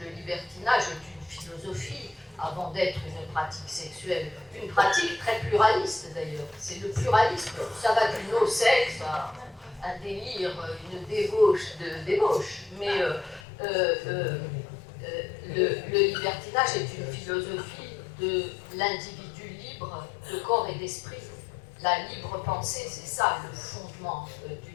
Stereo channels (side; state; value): right; drops out; at 13.4 s